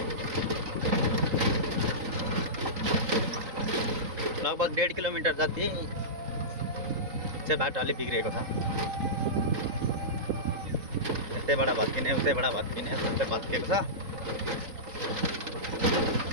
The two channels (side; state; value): left; late; 3.9 ms